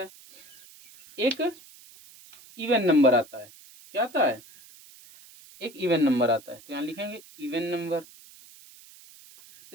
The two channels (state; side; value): noise; right; hiss, 22 dB below the sound